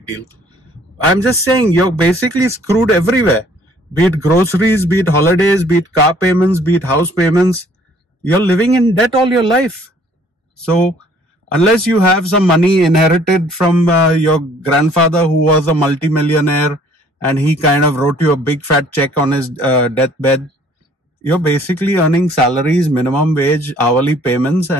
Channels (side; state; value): both; normal; correlation 0.58